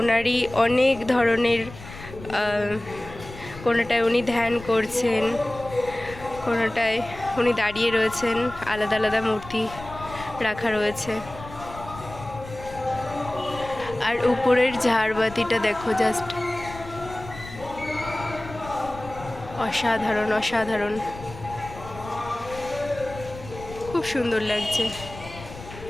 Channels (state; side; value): noise; left; rumble, 15 dB below the sound